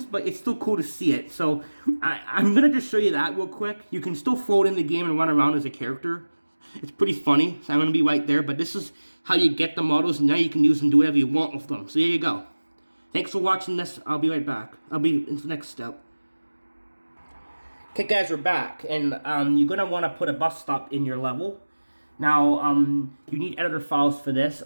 but it's still cool to see it. So I'm going to just show you that real quick. You can still float in the game and run around as a character. It's pretty funny. So I'm going to be right there. But this is how you get the models, and now you can use them, do whatever you want with them. So there you go. Thanks for watching this. I'll be right back. I'll be in the next step. Okay, guys, we're back, and you're going to want to put a bus stop in your level. Now, you need editor files for this,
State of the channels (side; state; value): both; inverted; correlation -1.00